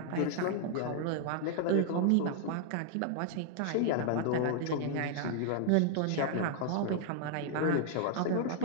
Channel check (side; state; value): both; different; correlation 0.00